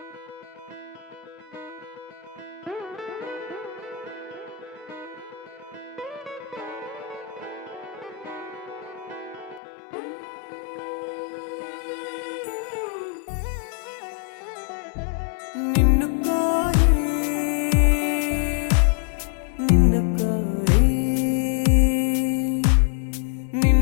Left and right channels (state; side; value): drops out; right; at 9.6 s